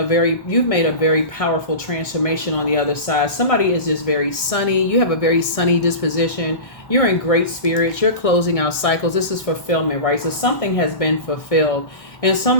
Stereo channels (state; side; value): late; right; 1.6 ms